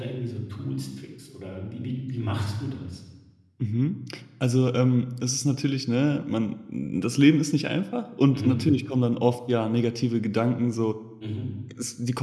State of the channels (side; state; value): both; identical; correlation 1.00